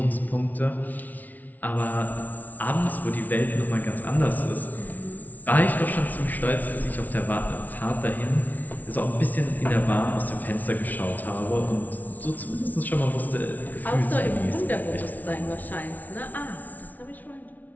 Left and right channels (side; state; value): right; late; 0.077 ms